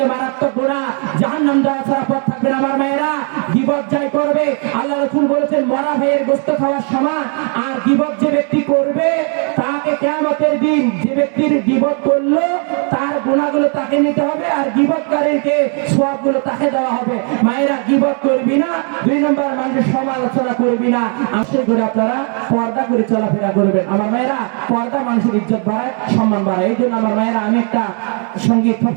মারাত্মক গুনাহ, জাহান্নাম যাওয়া ছাড়া পথ থাকবে না। আমার মায়েরা, গীবত যাই করবে, আল্লাহ রাসূল বলেছেন মরা ভাইয়ের গোশত খাওয়ার সমান। আর গীবত যে ব্যক্তি করবে তাকে কিয়ামতের দিন, যে ব্যক্তির গীবত করলো তার গুনাহগুলো তাকে নিতে হবে, আর গীবতকারীকে সওয়াবগুলো তাকে দেওয়া হবে। মায়েরা, গীবত করবি না, দুই নম্বর মানুষের সমালোচনা করবি না, আশা করে আপনারা পর্দা করে চলাফেরা করবেন। আমার মায়েরা, পর্দা মানুষের ইজ্জত বাড়ায়, সম্মান বাড়ায়। এই জন্য আমার মায়েরা, আমি একটা সঙ্গীত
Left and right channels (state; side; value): quieter; left; 39.9 dB